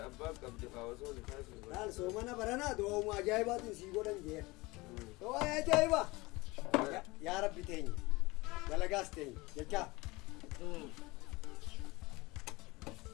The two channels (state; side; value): quieter; right; 22.6 dB